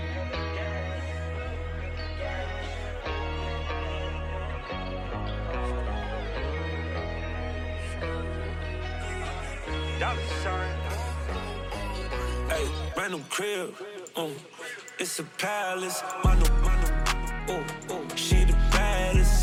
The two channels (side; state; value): both; identical; correlation 1.00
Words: Hey, random crib, it's a palace, mano, she the baddest,